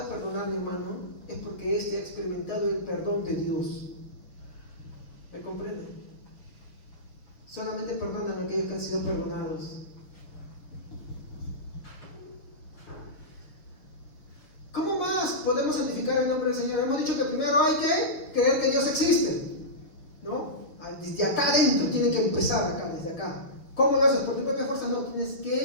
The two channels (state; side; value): late; right; 6.6 ms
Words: perdonar, mi hermano, es porque éste ha experimentado el perdón de Dios. ¿Me comprende? Solamente perdonan a aquellos que han sido perdonados. ¿Cómo más podemos santificar el nombre del Señor? Hemos dicho que primero hay que creer que Dios existe, ¿no? Desde acá adentro tiene que empezar, acá, desde acá. ¿Cómo lo haces? ¿Por tu propia fuerza? No, tienes